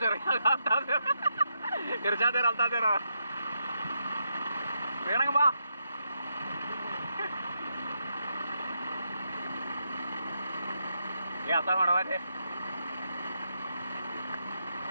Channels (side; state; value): both; inverted; correlation -0.82